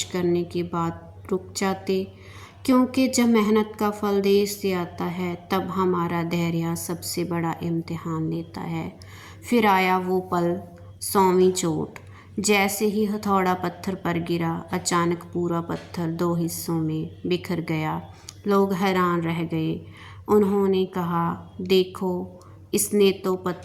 करने के बाद रुक जाते? क्योंकि जब मेहनत का फल देर से आता है, तब हमारा धैर्य सबसे बड़ा इम्तिहान लेता है। फिर आया वो पल, 100वीं चोट। जैसे ही हथौड़ा पत्थर पर गिरा, अचानक पूरा पत्थर 2 हिस्सों में बिखर गया। लोग हैरान रह गए। उन्होंने कहा, देखो, इसने तो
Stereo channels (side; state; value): both; identical; correlation 1.00